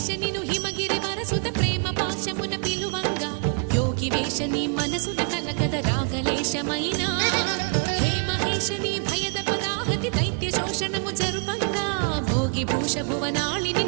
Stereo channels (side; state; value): left; quieter; 38.1 dB